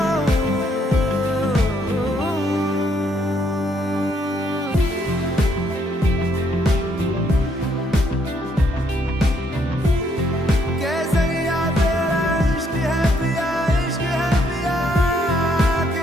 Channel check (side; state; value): both; normal; correlation 0.71